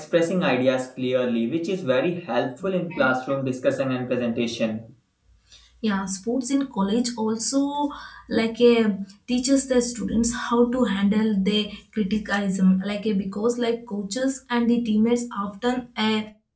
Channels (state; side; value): identical; both; correlation 1.00